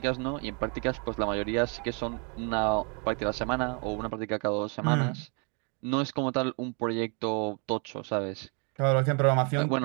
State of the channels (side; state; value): left; quieter; 35.4 dB